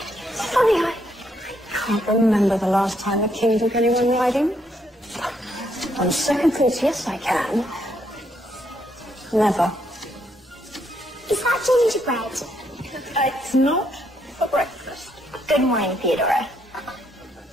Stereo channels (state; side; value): normal; both; correlation 0.74